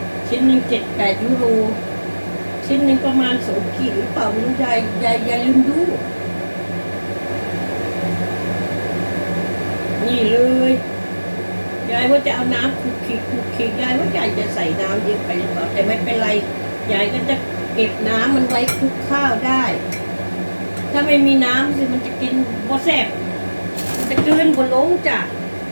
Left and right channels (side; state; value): both; inverted; correlation -1.00